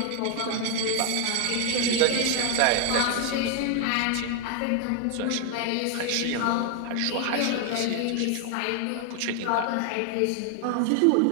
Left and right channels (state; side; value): different; both; correlation 0.00